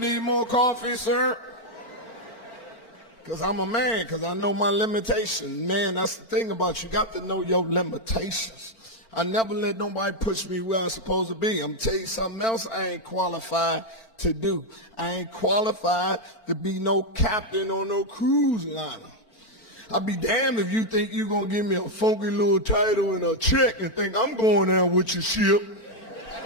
more coffee, sir? Because I'm a man, because I know my limitations. Man, that's the thing about you. You got to know your limitations. I never let nobody push me where I'm supposed to be. I'm going to tell you something else I ain't qualified to do. I ain't qualified to be no captain on no cruise liner. I'll be damned if you think you're going to give me a funky little title and a check and think I'm going out with your ship.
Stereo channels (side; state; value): right; late; 4.4 ms